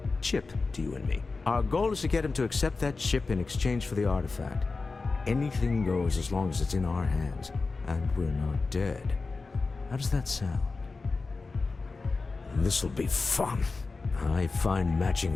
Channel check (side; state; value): right; quieter; 4.0 dB